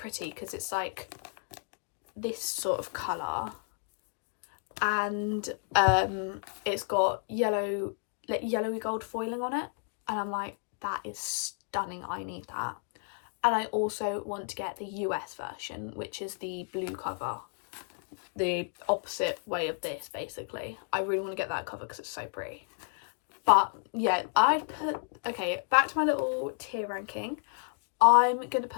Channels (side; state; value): right; silent; 57 dB below the other